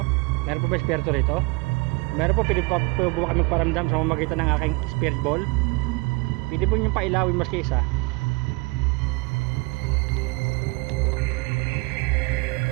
Meron po ba espiritu rito? Meron po, pwede po ba kami paramdam sa mamagitan ng aking spirit ball? Pwede po niyong pailawin maski isa.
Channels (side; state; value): left; quieter; 27.0 dB